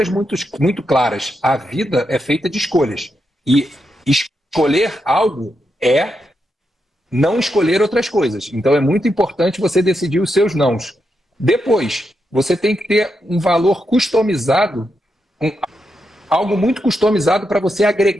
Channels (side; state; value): both; normal; correlation 0.84